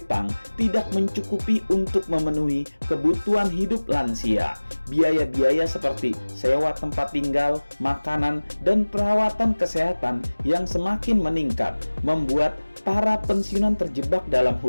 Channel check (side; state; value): both; inverted; correlation -1.00